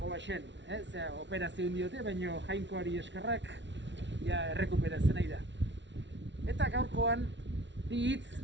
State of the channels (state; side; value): late; left; 0.52 ms